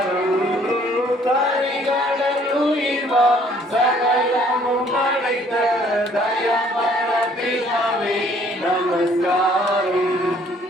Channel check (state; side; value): normal; both; correlation 0.60